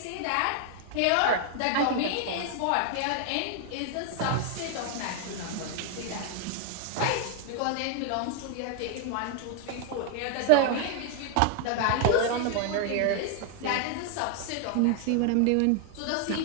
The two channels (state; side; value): different; both; correlation 0.00